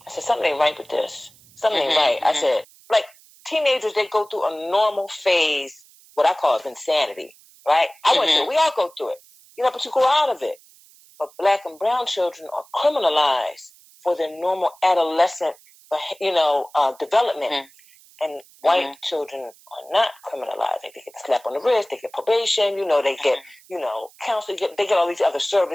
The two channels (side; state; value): right; noise; hiss, 26 dB below the sound